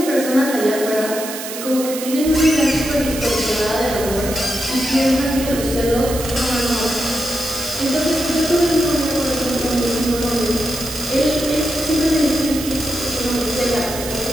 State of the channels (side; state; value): right; noise; hiss, 8 dB below the sound